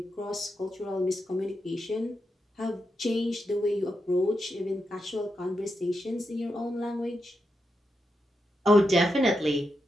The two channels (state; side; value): normal; both; correlation 0.86